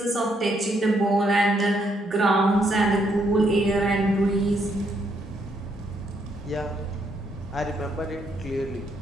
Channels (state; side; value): normal; both; correlation 0.74